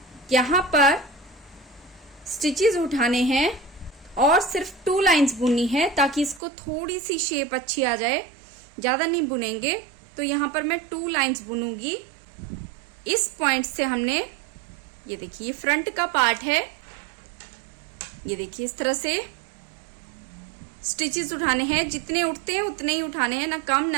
यहाँ पर स्टिचेस उठाने हैं और सिर्फ 2 लाइंस बुननी है, ताकि इसको थोड़ी सी शेप अच्छी आ जाए, ज्यादा नहीं बुनेंगे। तो यहाँ पर मैं 2 लाइंस बुनूंगी। इस पॉइंट से हमने ये देखिए, ये फ्रंट का पार्ट है, ये देखिए इस तरह से स्टिचेस उठाने हैं। जितने उठते हैं उतने ही उठाने हैं, ना कम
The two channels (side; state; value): left; drops out; at 6.4 s